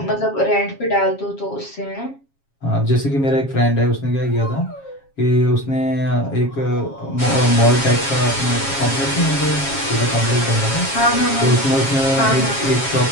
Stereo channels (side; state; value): right; late; 7.3 ms